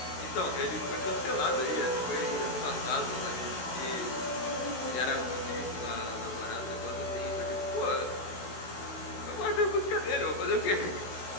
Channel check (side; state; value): right; late; 16 ms